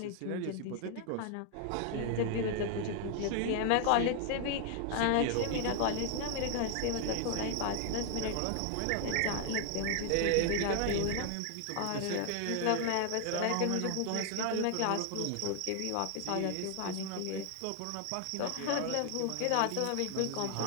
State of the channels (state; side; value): different; both; correlation 0.00